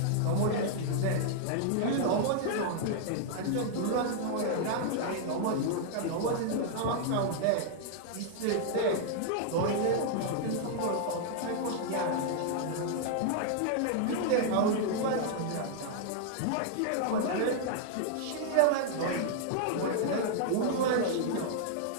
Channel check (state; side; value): different; both; correlation -0.01